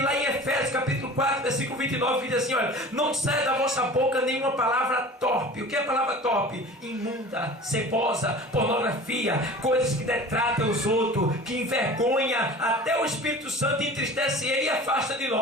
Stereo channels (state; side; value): normal; both; correlation 0.40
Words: lá em Efésios capítulo 4, versículo 29, que diz assim: olha, não saia da vossa boca nenhuma palavra torpe. O que é a palavra torpe? Imunda, cebosa, pornografia, coisas que detratam os outros, que envergonha até o Espírito Santo, entristece ele e afasta de